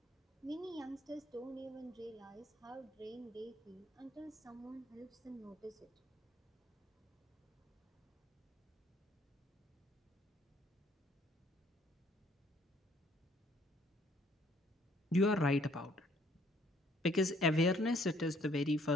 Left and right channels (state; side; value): normal; both; correlation 0.63